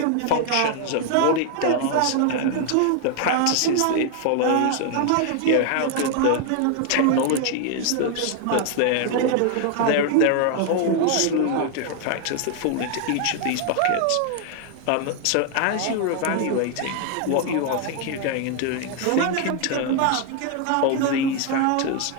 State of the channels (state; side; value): different; both; correlation 0.00